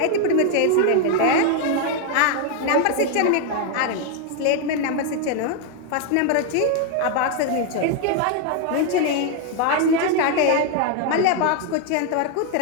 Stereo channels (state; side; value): different; both; correlation 0.00